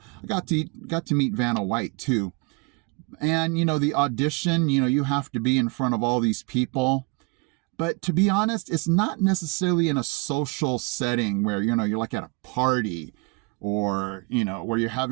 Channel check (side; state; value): left; quieter; 30.7 dB